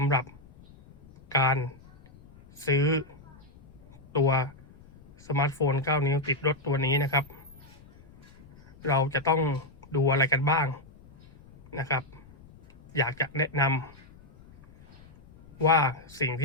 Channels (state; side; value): noise; left; rumble, 24 dB below the sound